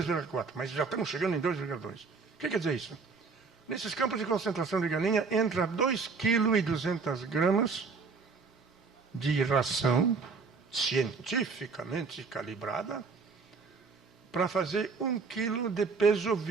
mas já estamos chegando em 2,2. O que quer dizer isso? Nesses campos de concentração de galinha, entra 2,2 kg de ração cientificamente calibrada para fazer 1 kg de peso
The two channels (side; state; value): left; quieter; 4.8 dB